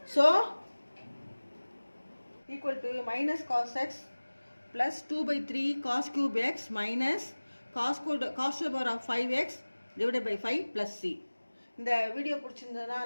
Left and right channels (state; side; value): inverted; both; correlation -1.00